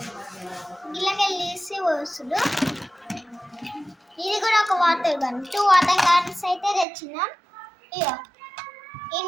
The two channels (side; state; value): left; drops out; at 6.9 s